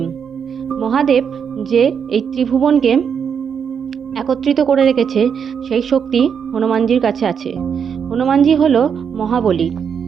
মহাদেব যে এই ত্রিভুবনকে একত্রিত করে রেখেছে, সেই শক্তি হনুমানজির কাছে আছে। হনুমানজি হলো মহাবলী।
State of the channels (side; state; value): left; quieter; 7.1 dB